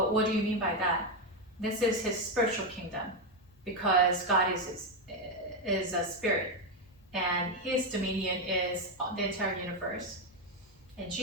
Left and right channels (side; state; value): both; normal; correlation 0.07